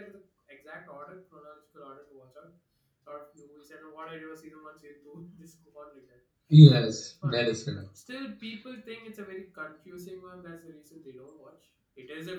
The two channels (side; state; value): both; identical; correlation 1.00